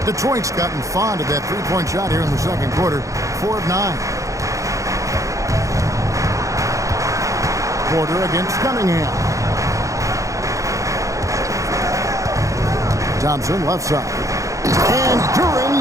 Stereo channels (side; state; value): left; late; 0.15 ms